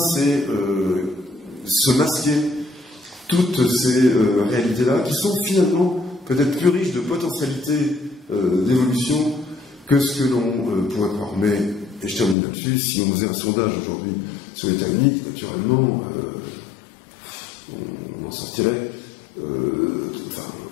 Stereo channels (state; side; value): drops out; right; at 12.4 s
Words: c'est se masquer toutes ces réalités-là, qui sont finalement peut-être plus riches de potentialités d'évolution que ce que l'on pourrait croire. Mais, et je termine là-dessus, si on faisait un sondage aujourd'hui sur l'État unique, naturellement, on en sortirait